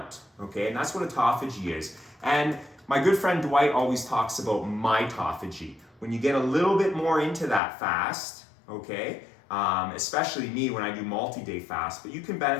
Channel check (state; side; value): drops out; right; at 7.6 s